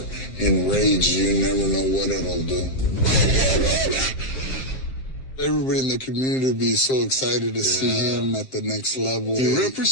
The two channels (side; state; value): right; late; 7.6 ms